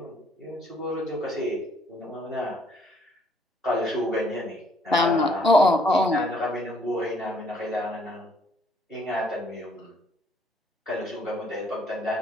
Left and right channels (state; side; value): normal; both; correlation 0.66